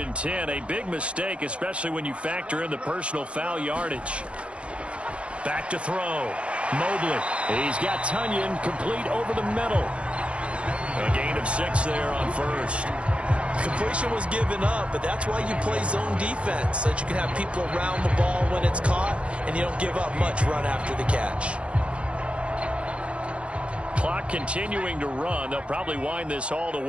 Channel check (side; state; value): left; late; 0.060 ms